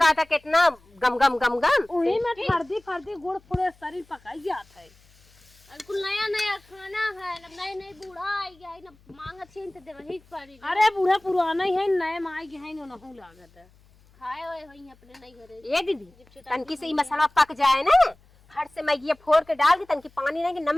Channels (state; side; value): noise; left; hum, 29 dB below the sound